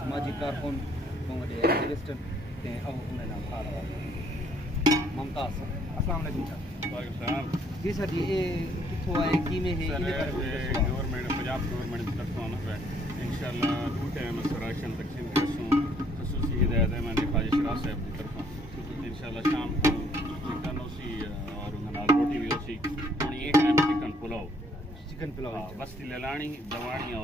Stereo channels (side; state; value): both; normal; correlation 0.64